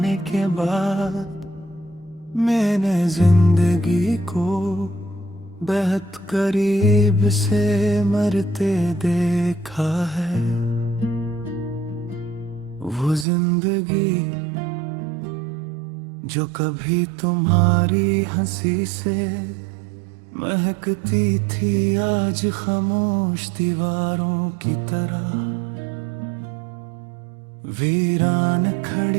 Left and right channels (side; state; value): left; drops out; at 13.2 s